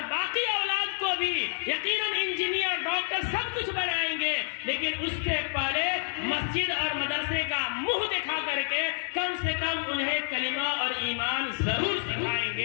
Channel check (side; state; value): right; silent; digital silence